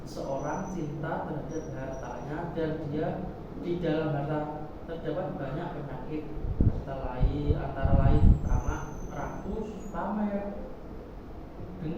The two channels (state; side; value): identical; both; correlation 1.00